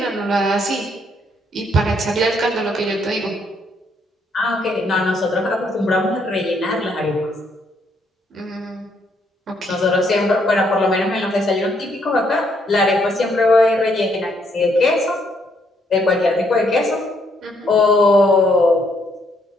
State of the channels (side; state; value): both; normal; correlation 0.72